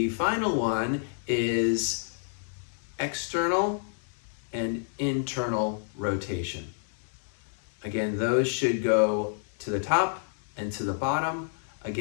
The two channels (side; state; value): right; silent; 59 dB below the other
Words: final one is external and internal rotation. Again, those should go to the top and to the bottom.